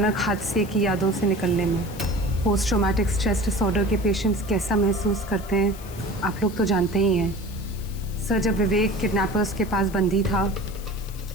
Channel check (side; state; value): left; noise; hiss, 18 dB below the sound